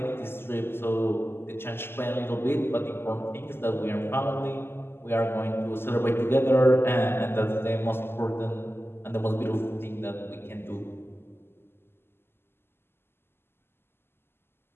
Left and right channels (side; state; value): right; late; 0.11 ms